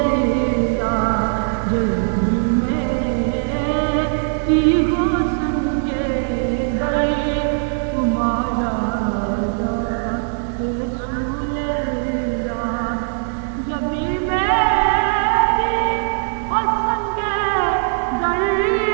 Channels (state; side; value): silent; left; 59 dB below the other